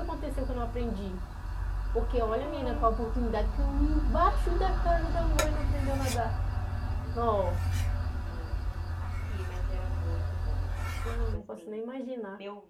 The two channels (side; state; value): both; identical; correlation 1.00